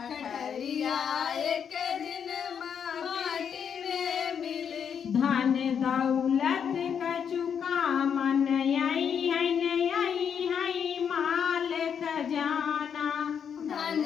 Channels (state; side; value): quieter; right; 7.6 dB